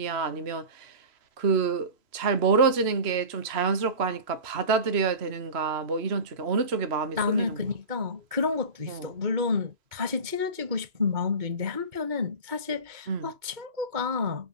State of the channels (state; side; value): late; left; 2.2 ms